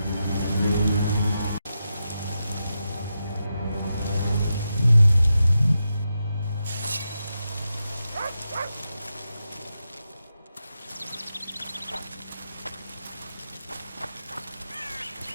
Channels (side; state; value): both; inverted; correlation -0.88